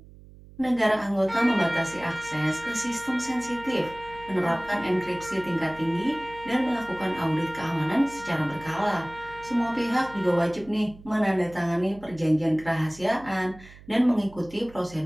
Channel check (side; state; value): right; noise; hum, 21 dB below the sound